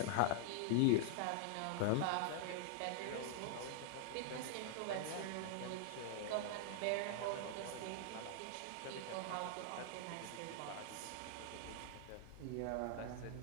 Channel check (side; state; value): both; different; correlation -0.01